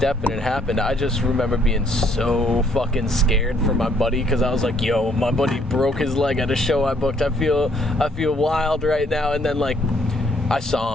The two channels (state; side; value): normal; both; correlation 0.66